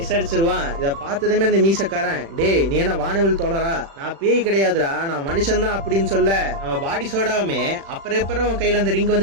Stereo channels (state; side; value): late; left; 36 ms